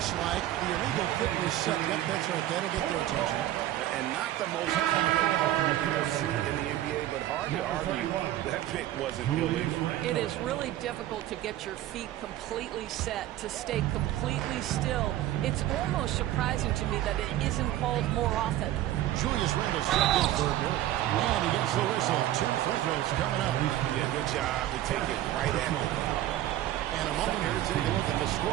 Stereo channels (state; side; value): quieter; left; 13.7 dB